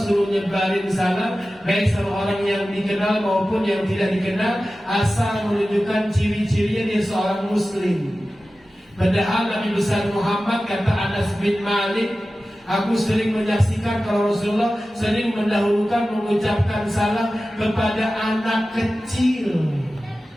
nyebarin salam baik sama orang yang dikenal maupun yang tidak dikenal, asal menunjukkan ciri-cirinya dia seorang muslim. Padahal Nabi besar Muhammad, kata Anas bin Malik, aku sering menyaksikan kalau Rasulullah sering mendahulukan mengucapkan salam kepada anak kecil.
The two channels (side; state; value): both; normal; correlation 0.95